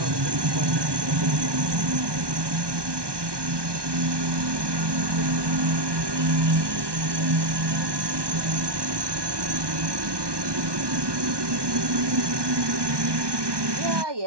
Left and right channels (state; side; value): late; left; 1.2 ms